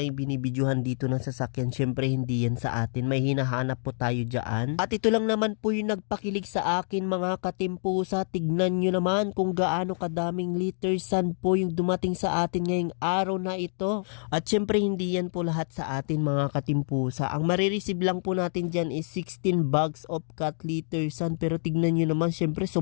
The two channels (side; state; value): right; silent; digital silence